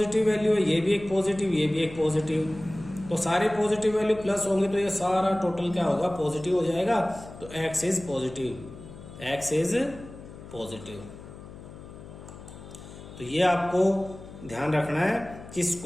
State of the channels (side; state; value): left; noise; hum, 16 dB below the sound